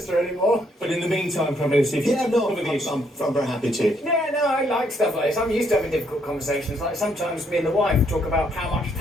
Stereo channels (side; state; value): both; normal; correlation 0.72